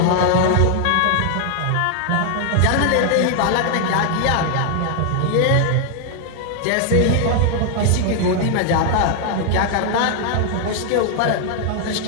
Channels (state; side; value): different; both; correlation 0.00